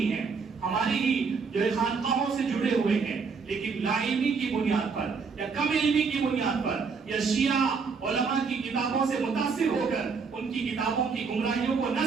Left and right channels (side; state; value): left; quieter; 5.2 dB